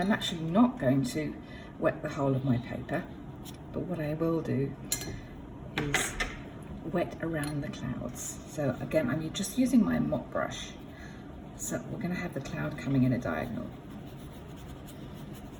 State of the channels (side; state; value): both; identical; correlation 1.00